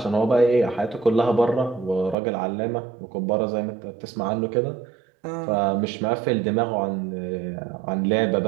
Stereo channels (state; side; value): drops out; left; at 2.1 s